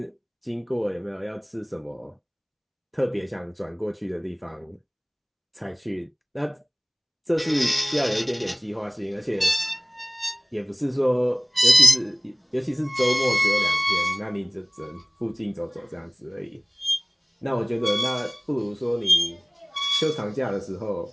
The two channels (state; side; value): identical; both; correlation 1.00